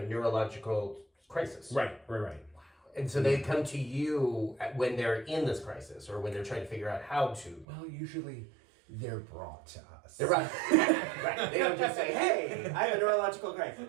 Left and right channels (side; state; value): left; drops out; at 7.7 s